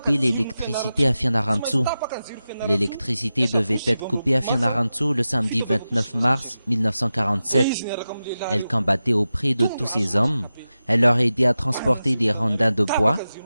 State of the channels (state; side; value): inverted; both; correlation -0.93